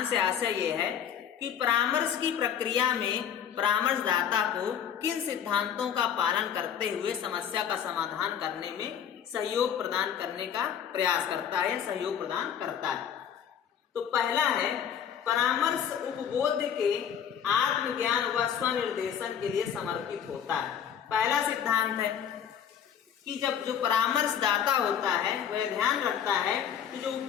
से आशय यह है कि परामर्श की प्रक्रिया में परामर्शदाता को किन सिद्धांतों का पालन करते हुए समस्या का समाधान करने में सहयोग प्रदान करने का प्रयास करता है, सहयोग प्रदान करता है। तो पहला है, परामर्श उपबोध के आत्मज्ञान व स्वनिर्देशन के लिए समर्पित होता है। पहला सिद्धांत है कि जब जो परामर्शदाता होता है वह ध्यान रखता है कि जो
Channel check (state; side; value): quieter; right; 8.7 dB